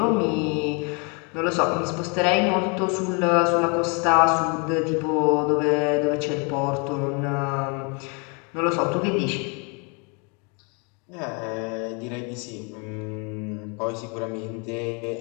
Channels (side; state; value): right; quieter; 33.6 dB